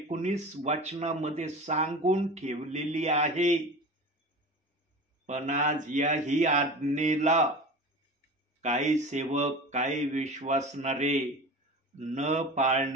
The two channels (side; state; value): both; normal; correlation 0.33